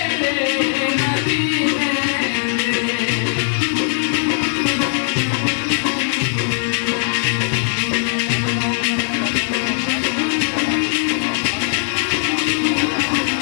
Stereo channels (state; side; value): silent; right; digital silence